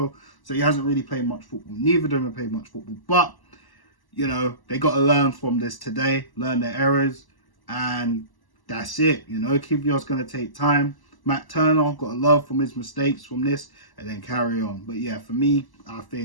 So he hasn't really played much football. Neither of them have played much football, but you know, they got to learn from this today, learn their errors, and that's it. You know, Kivior's going to take time. Matt Turner got to love from his mistakes from this and then carry on. But yeah, for me, I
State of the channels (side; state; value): right; late; 1.0 ms